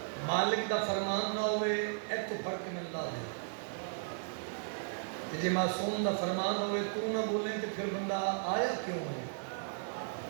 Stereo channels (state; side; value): silent; left; digital silence